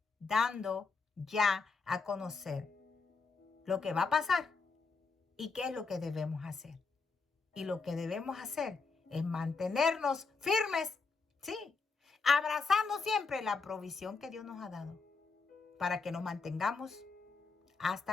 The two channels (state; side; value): quieter; right; 4.5 dB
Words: dando ya a conocer lo que va a pasar y qué es lo que debemos hacer. Y lo que debemos hacer es mantenernos firmes Sí, abrazando siempre la provisión que Dios nos ha dado para que nos mantengamos hasta